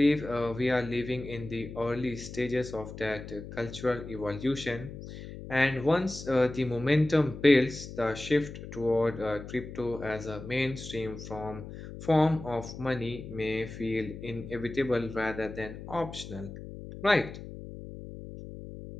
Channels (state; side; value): noise; left; hum, 11 dB below the sound